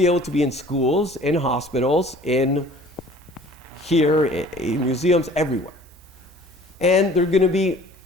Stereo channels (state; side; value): normal; both; correlation 0.50